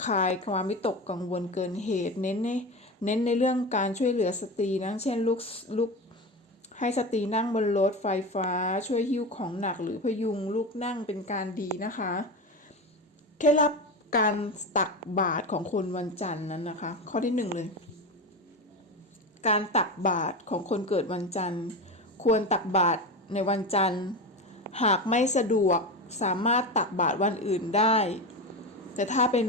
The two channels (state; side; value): normal; both; correlation 0.22